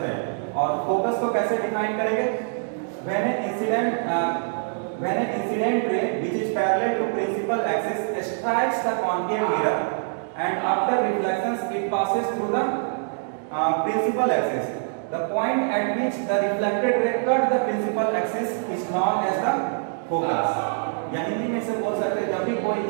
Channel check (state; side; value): silent; left; digital silence